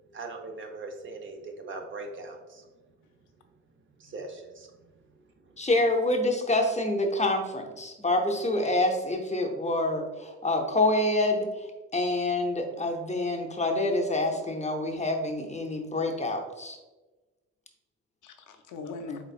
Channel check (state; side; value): normal; both; correlation 0.18